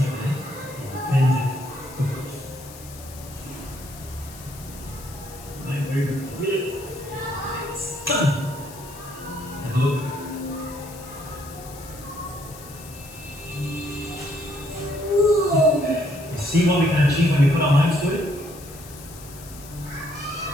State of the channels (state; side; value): noise; left; hiss, 17 dB below the sound